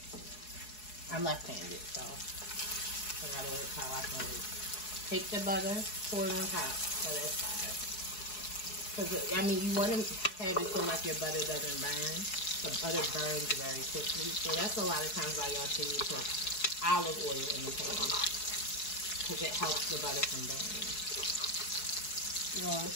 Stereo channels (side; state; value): right; late; 4.7 ms